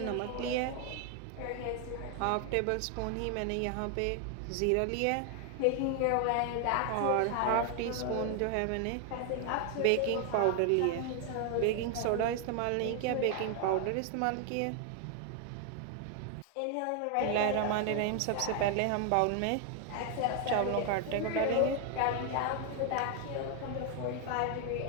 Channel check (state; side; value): different; both; correlation 0.00